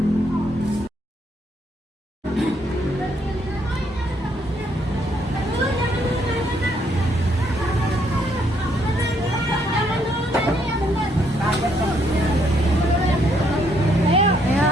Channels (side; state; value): both; normal; correlation 0.71